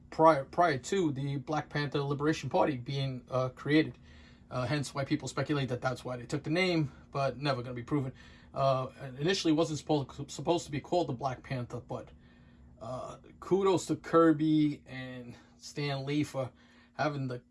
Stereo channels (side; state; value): both; identical; correlation 1.00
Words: prior to the Black Panther Liberation Party being created. Hence why people speculate that that's why they took the name, but never going to be proven. Initially, it wasn't supposed to be called the Black Panther, but kudos to Kirby and Stan Lee for having the